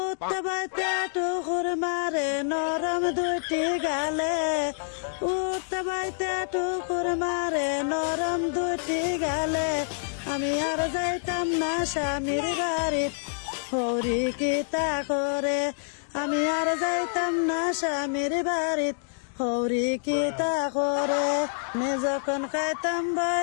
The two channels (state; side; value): silent; right; digital silence